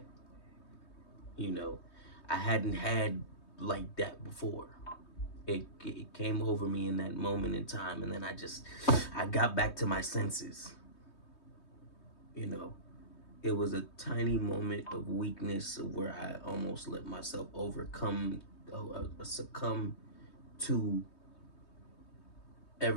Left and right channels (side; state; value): right; late; 3.2 ms